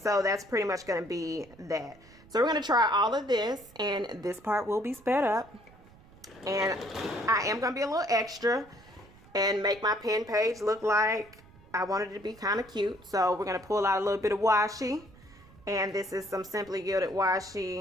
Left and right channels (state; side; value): noise; right; rumble, 24 dB below the sound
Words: that's pretty much going to be that. So we're going to try all of this, and this part will be sped up. And I am going to be a little extra and make my pen page look like I wanted it to be kind of cute. So we're going to pull out a little bit of washi. And this is some Simply Gilded